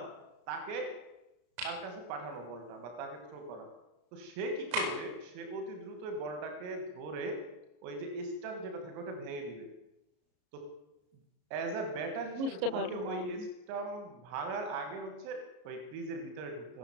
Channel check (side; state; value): left; late; 33 ms